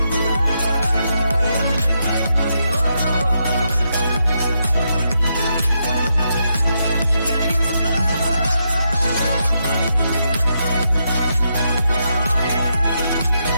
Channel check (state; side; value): inverted; both; correlation -0.81